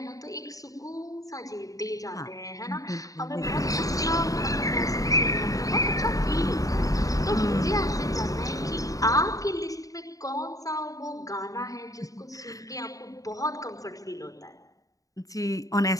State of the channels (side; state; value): right; late; 0.17 ms